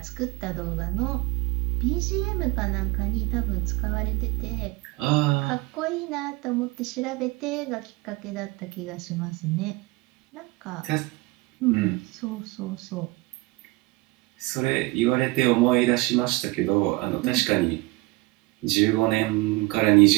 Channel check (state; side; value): quieter; left; 22.1 dB